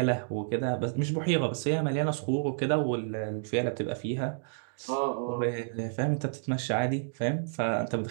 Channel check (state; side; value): silent; left; digital silence